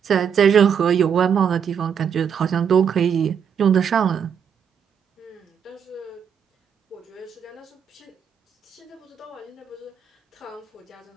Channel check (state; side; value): quieter; left; 7.6 dB